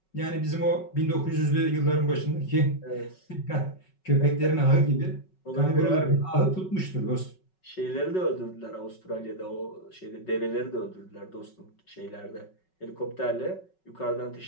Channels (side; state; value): right; late; 5.4 ms